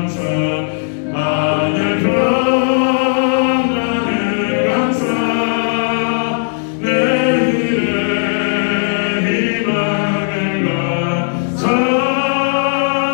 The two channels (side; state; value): right; silent; digital silence